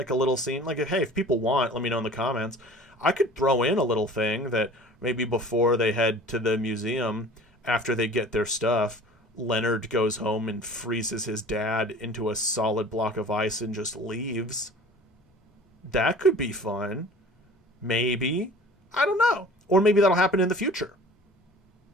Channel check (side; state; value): both; normal; correlation 0.45